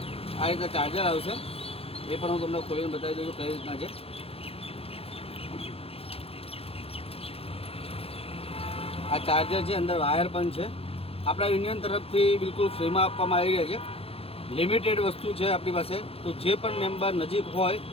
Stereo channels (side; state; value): right; late; 0.28 ms